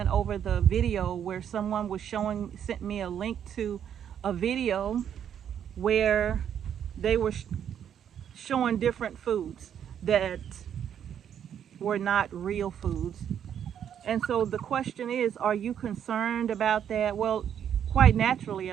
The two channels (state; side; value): quieter; left; 9.1 dB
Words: over the video where someone was sent me a link to a video where they were showing different foods that were not real foods. And so the question is, are you concerned about that? Well, quite naturally